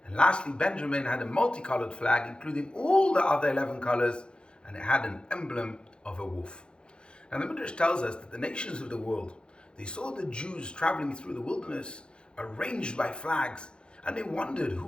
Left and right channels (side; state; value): right; late; 0.052 ms